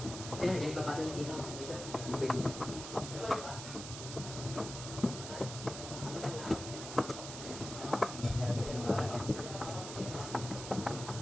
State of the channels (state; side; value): noise; right; hiss, 8 dB below the sound